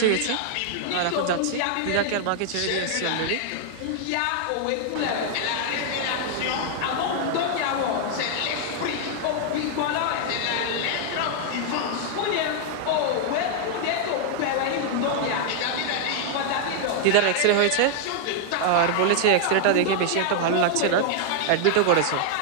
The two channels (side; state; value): both; different; correlation -0.01